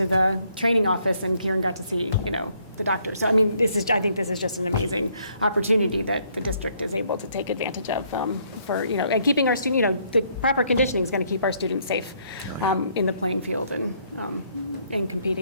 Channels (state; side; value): inverted; both; correlation -0.68